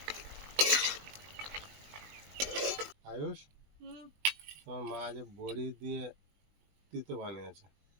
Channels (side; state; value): left; late; 20 ms